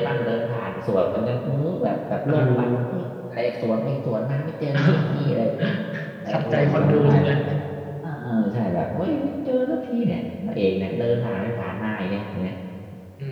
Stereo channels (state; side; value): identical; both; correlation 1.00